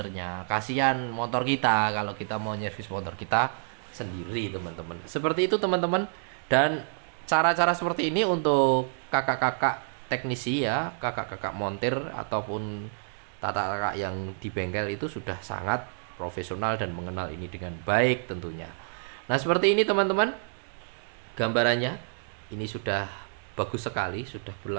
kasihan motor kita kalau kita mau nyervis motor kita sendiri teman-teman. Seperti itu teman-teman. Dan cara-cara seperti ini untuk kakak-kakak teknisi ya, kakak-kakak montir ataupun tata kakak yang di bengkel itu sudah sangat profesional dan mengenal ini dengan baik tentunya. Nah seperti ini teman-teman gambarannya. Ini sudah bagus sekali, sudah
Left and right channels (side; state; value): left; silent; digital silence